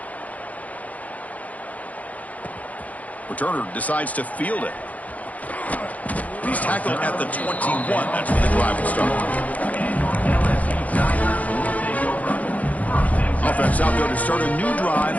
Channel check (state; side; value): late; right; 0.072 ms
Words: Returner decides to field it. He's tackled at the 21. That's when the drive will start. Offense out there to start a new drive